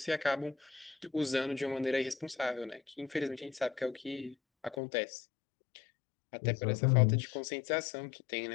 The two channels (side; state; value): right; drops out; at 4.8 s